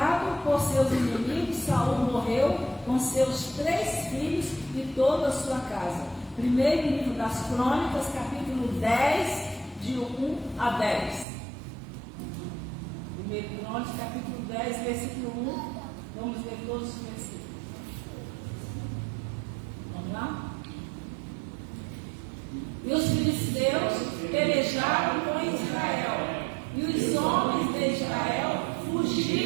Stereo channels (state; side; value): drops out; left; at 11.2 s